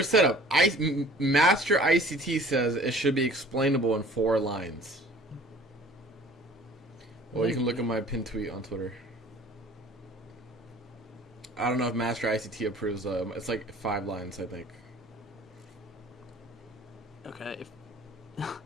setup? Master ICT says it should be explainable in 4 lines. Well, you can look at my pinned tweet on Twitter. I don't know if Master ICT approves. It's like 5 lines, I think. Okay.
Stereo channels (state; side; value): normal; both; correlation 0.49